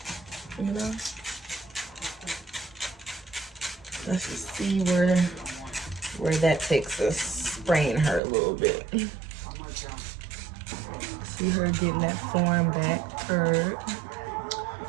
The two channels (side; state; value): left; drops out; at 8.2 s